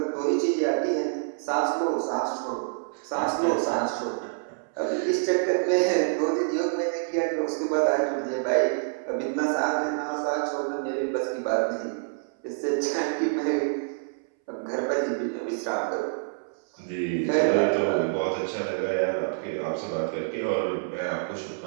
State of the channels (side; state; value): left; silent; 60 dB below the other